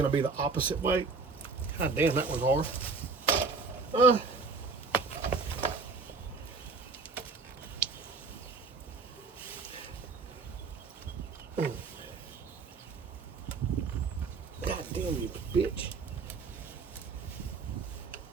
going to be the opposite way. God damn, that was hard. God damn you, bitch.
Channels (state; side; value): quieter; left; 4.4 dB